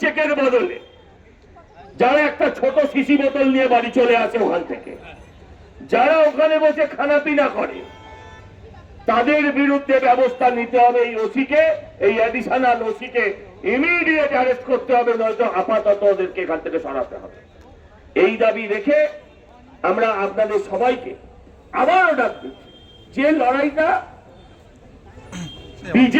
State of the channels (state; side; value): identical; both; correlation 1.00